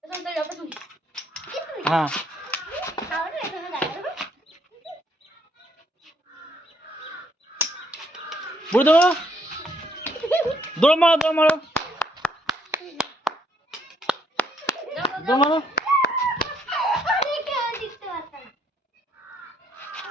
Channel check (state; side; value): normal; both; correlation 0.69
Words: হ্যাঁ বুড়ি দেবো দৌড় মারো দৌড় মারো দৌড় মারো